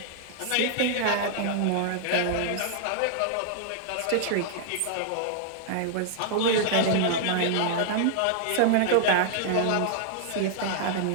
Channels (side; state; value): both; different; correlation -0.01